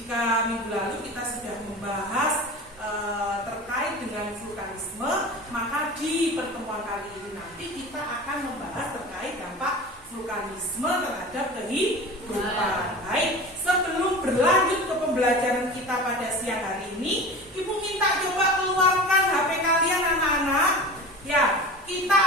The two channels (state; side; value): normal; both; correlation 0.34